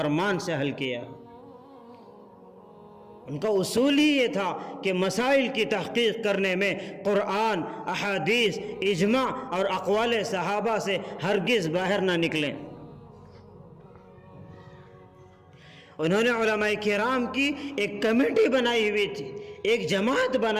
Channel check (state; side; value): identical; both; correlation 1.00